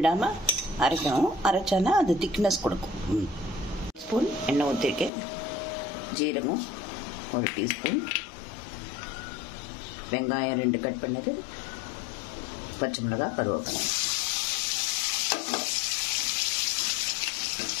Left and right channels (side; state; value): right; drops out; at 5.1 s